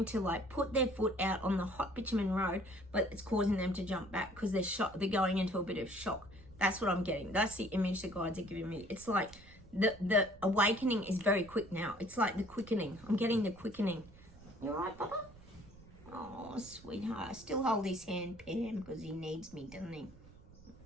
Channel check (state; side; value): noise; right; rumble, 21 dB below the sound